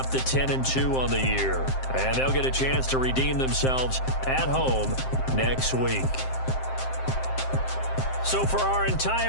to 10-2 on the year. And they'll get a chance to redeem themselves at home next week. So for our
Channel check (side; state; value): right; late; 7.6 ms